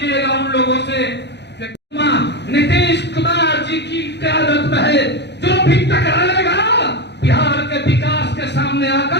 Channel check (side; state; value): right; late; 0.50 ms